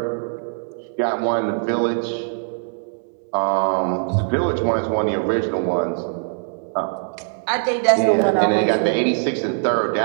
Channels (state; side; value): silent; left; digital silence